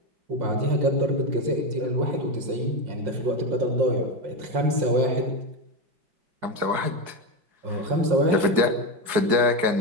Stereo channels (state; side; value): late; left; 4.8 ms